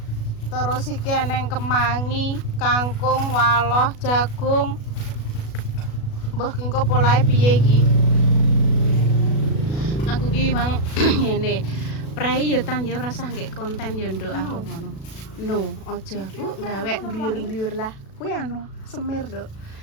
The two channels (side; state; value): right; late; 36 ms